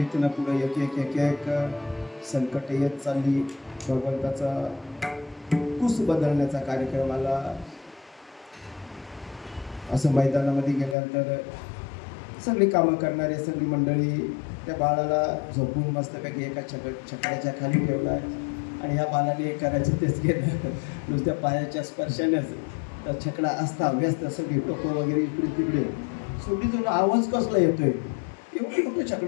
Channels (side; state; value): right; drops out; at 11.0 s